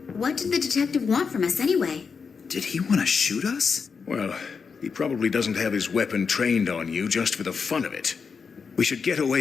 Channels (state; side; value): quieter; right; 5.6 dB